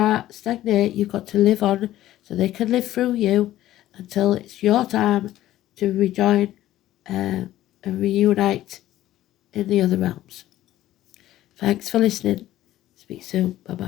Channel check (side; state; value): right; quieter; 14.2 dB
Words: stagnate. You've got to live on so they can live through you until it's your time to rejoin and reunite in the other realms. Thanks for listening. Speak soon.